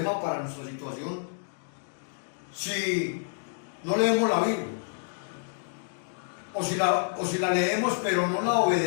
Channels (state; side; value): silent; right; digital silence